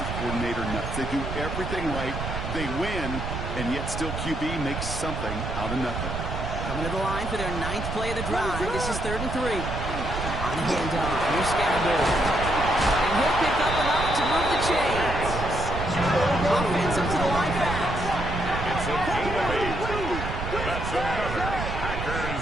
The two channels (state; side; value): noise; right; rumble, 5 dB below the sound